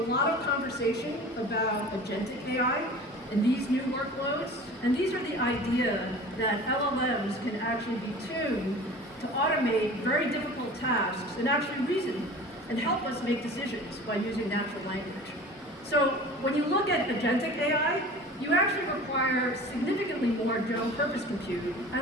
of conversation about agentic AI and these new workloads. And these are the idea that LLMs can actually be tuned to automate very difficult tasks and actually reason and help us make decisions by using natural language. So when you look at agentic AI, you actually require significantly more general purpose compute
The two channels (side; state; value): both; normal; correlation 0.40